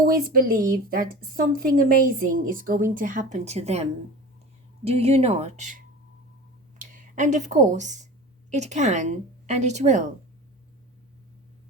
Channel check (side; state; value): both; normal; correlation 0.35